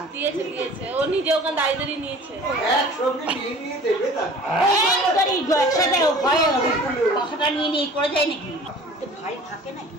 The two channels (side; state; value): both; normal; correlation 0.45